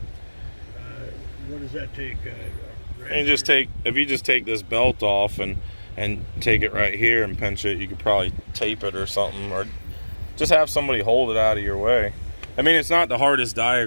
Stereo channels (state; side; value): inverted; both; correlation -1.00